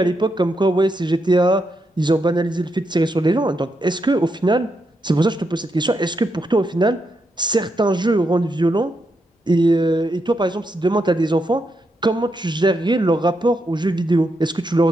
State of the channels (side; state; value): both; normal; correlation 0.82